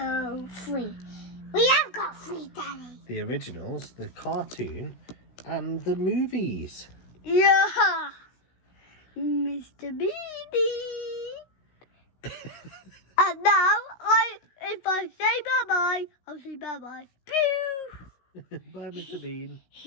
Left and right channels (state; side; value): late; right; 16 ms